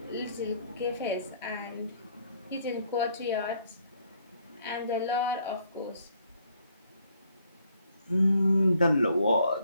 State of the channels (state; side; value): inverted; both; correlation -0.67